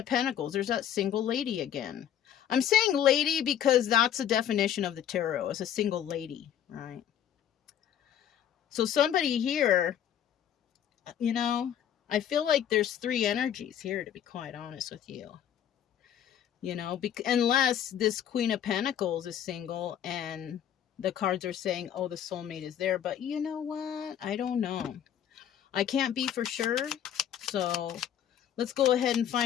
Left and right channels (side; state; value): right; quieter; 9.9 dB